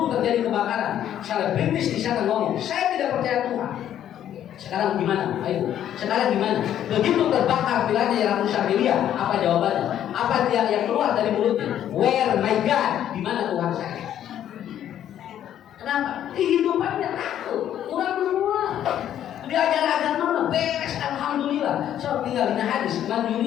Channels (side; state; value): right; quieter; 10.8 dB